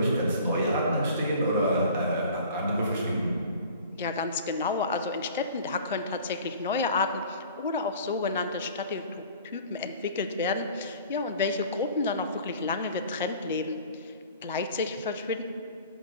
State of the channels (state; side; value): inverted; both; correlation -0.46